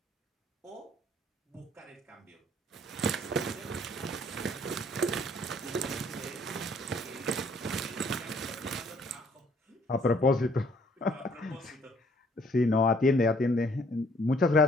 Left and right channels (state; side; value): normal; both; correlation 0.62